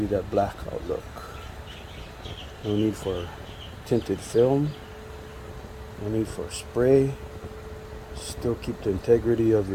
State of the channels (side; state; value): both; identical; correlation 1.00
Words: that blackout look. No need for tinted film, no need for spray, still keep the integrity of